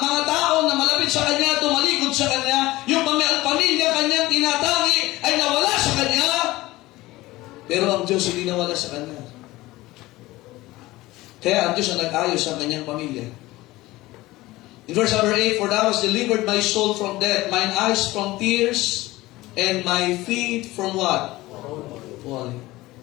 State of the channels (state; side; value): quieter; right; 18.7 dB